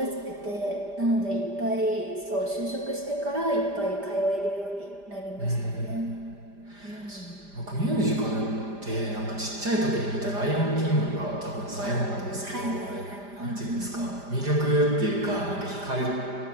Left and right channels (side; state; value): left; late; 5.0 ms